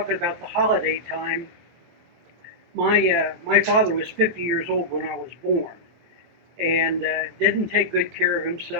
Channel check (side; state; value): left; late; 23 ms